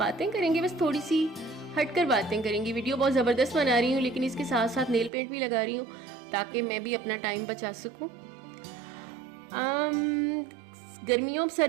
करेंगे, बस थोड़ी सी हटकर बातें करेंगी। वीडियो बहुत ज़बरदस्त बना रही हूँ, लेकिन इसके साथ साथ नेल पेंट भी लगा रही हूँ ताकि मैं भी अपना टाइम बचा सकूँ। गर्मियों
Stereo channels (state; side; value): drops out; left; at 5.1 s